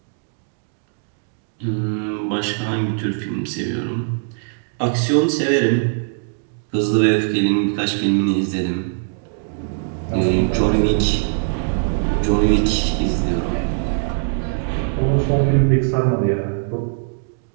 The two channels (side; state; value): left; silent; digital silence